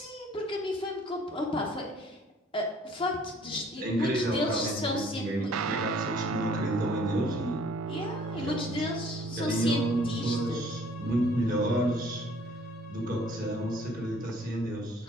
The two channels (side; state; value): both; normal; correlation 0.57